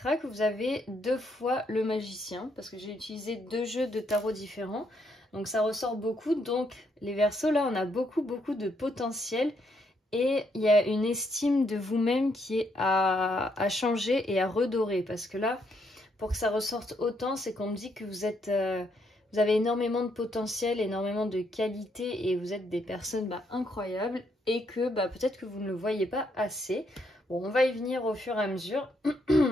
que vous avez 2 fois le magicien, parce que j'ai utilisé 2 jeux de tarot différents. Donc ça ressort beaucoup. Donc les Verseaux, là, on a beaucoup de potentiel. Et il y a une estime de vous-même qui est à changer et à redorer. Parce que là, pour que ça ressorte autant, c'est qu'on me dit que vous êtes... vous avez énormément de potentiel, énormément de qualité et vous êtes des personnes incroyables. Et que peut-être que vous ne le voyez pas assez. Bon, on va y venir au fur et à mesure.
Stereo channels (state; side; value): normal; both; correlation 0.74